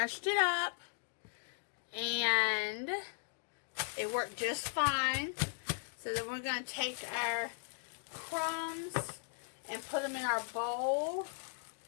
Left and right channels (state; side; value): silent; right; digital silence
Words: it up, and it worked just fine. So then we're going to take our crumbs and put them in our bowl.